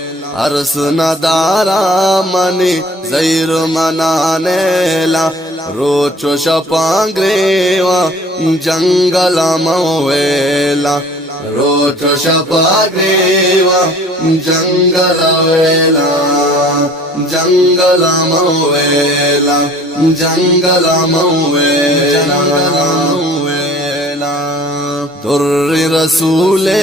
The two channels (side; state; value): both; normal; correlation 0.50